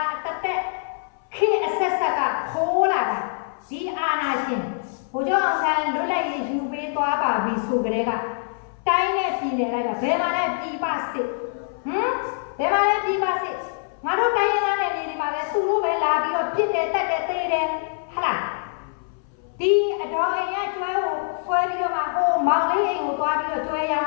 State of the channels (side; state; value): right; silent; 60 dB below the other